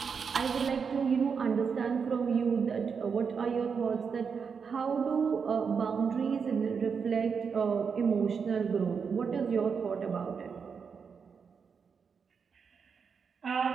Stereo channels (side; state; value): left; quieter; 6.0 dB